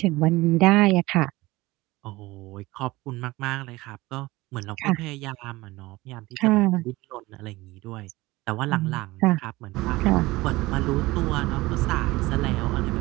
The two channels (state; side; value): quieter; left; 20.0 dB